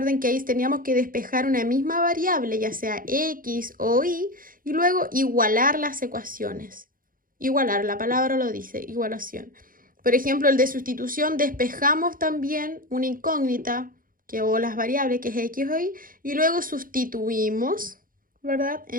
que ahí teníamos que despejar una misma variable, ya sea x o y luego igualar las ecuaciones. Igualar, la palabra lo dice, igualación. Por ejemplo, el de sustitución, despejamos también una incógnita, o las variables, que es x o y luego sustituimos, ¿verdad?,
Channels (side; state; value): left; late; 0.41 ms